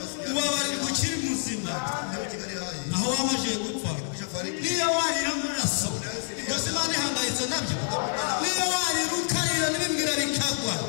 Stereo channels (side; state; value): right; silent; 60 dB below the other